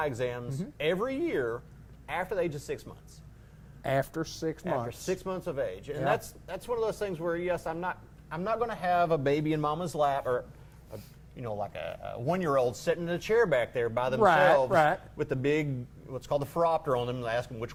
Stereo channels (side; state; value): both; identical; correlation 1.00